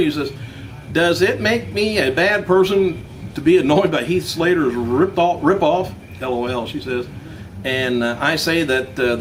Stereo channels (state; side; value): identical; both; correlation 1.00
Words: says, does it make me a bad person to be annoyed by Heath Slater's rip-off? LOL, she says. And I say that the